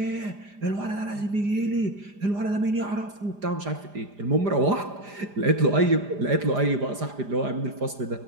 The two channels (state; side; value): late; left; 4.9 ms